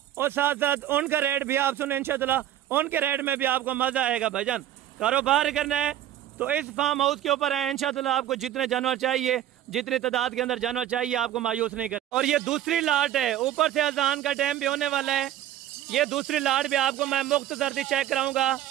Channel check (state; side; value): quieter; left; 12.0 dB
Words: और साथ साथ उनका रेट भी आप सुने इंशाअल्लाह, उनके रेट में भी आपको मज़ा आएगा। भाईजान कारोबार करना है तो इस फार्म हाउस के ऊपर है इंशाअल्लाह, आपको जितने जानवर चाहिए, जितनी तादाद के अंदर जानवर चाहिए, आपको मायूस नहीं कर। और ये दूसरी लाट है, ऊपर से अजान का टाइम भी होने वाला है, ये दूसरी लाट भी आपको मैं मुख्तसर सी चेक कराऊंगा।